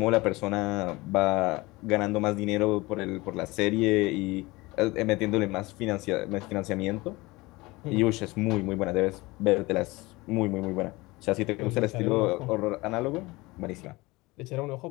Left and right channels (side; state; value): right; quieter; 22.1 dB